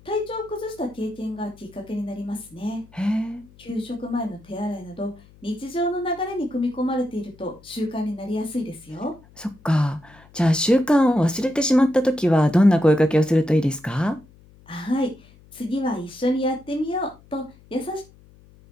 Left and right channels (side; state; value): left; noise; hum, 26 dB below the sound